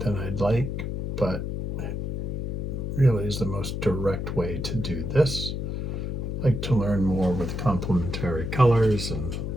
I'd like, but it really is the most direct way to do this. I like to learn more with complementary colors and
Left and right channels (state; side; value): noise; left; hum, 3 dB below the sound